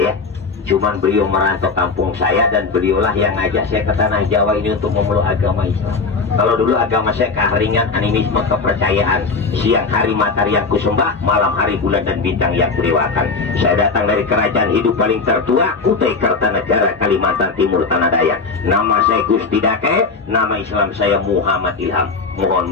Cuman beliau merantau kampung saya dan beliaulah yang ngajak saya ke tanah Jawa ini untuk memeluk agama Islam. Kalau dulu agama saya keharingan, animisme, kepercayaan. Siang hari matahari yang kusembah, malam hari bulan dan bintang yang kudewakan. Saya datang dari kerajaan hidup paling tertua, Kutai Kartanegara, Kalimantan Timur, Tanah Dayak. Nama saya Gusti Dake, nama Islam saya Muhammad Ilham. Mohon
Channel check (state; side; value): quieter; right; 4.4 dB